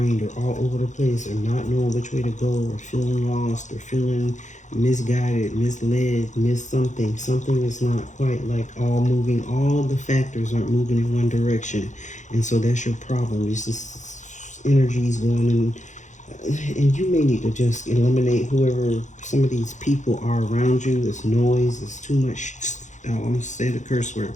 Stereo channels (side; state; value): right; late; 0.35 ms